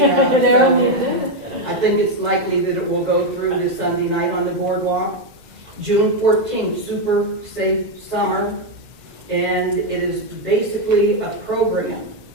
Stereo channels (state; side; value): late; left; 1.8 ms